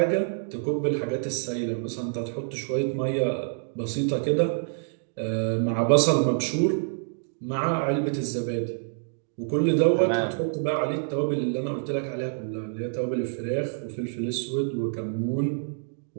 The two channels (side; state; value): left; silent; digital silence